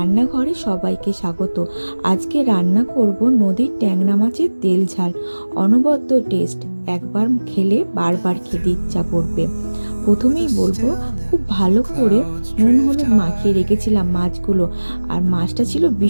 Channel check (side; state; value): both; inverted; correlation -1.00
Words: সবাইকে স্বাগত। আজকে রান্না করব নদীর ট্যাংরা মাছের তেল ঝাল। অনবদ্য টেস্ট, একবার খেলে বারবার খেতে ইচ্ছা করবে। প্রথমেই বলবো, খুব ভালো করে নুন হলুদ মাখিয়ে রেখেছিলাম মাছগুলো। আর মাছটা ছিল